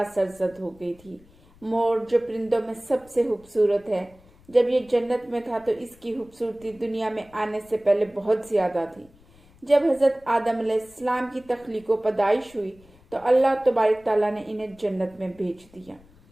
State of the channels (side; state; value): left; noise; rumble, 27 dB below the sound